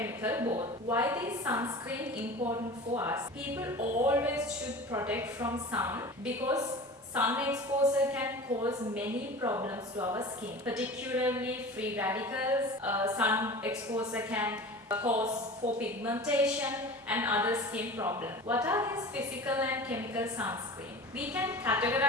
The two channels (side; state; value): both; normal; correlation 0.36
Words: both. Why is sunscreen important for us? People always should protect from sun because sun exposure can cause many problems to our skin, particularly free radicals. Sun exposure can cause for pigmentation and other skin problems. What are these physical and chemical sunscreen? We can